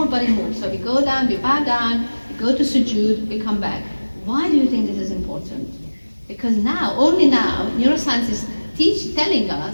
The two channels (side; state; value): both; inverted; correlation -1.00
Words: body moves. So we go down, we bow down, we go to sujood, we come back. Why do you think this is important? Because only now, neuroscience is telling